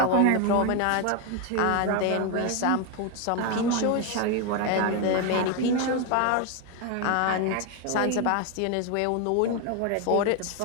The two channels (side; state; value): both; different; correlation 0.01